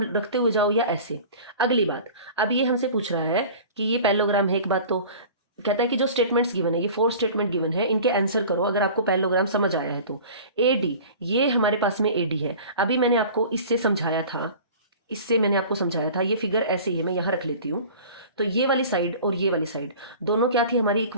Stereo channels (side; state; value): both; inverted; correlation -0.41